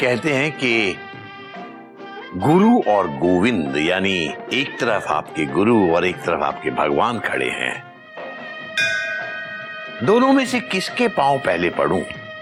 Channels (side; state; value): both; identical; correlation 1.00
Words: हैं कि गुरु और गोविंद यानी एक तरफ आपके गुरु और एक तरफ आपके भगवान खड़े हैं। दोनों में से किसके पांव पहले पड़ूं?